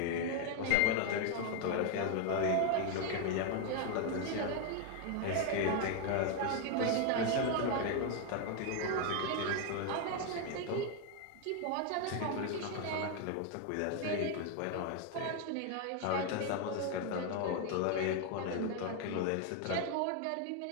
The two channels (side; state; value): both; different; correlation 0.01